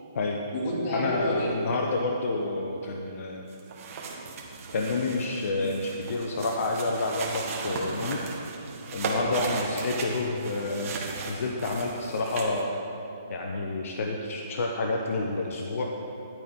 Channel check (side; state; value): both; inverted; correlation -0.61